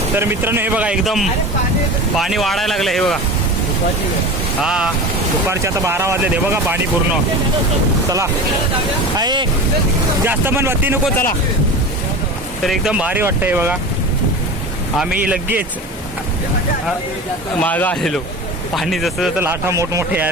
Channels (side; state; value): both; normal; correlation 0.31